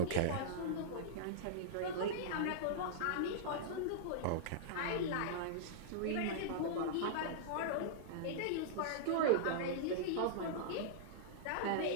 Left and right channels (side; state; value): both; different; correlation -0.02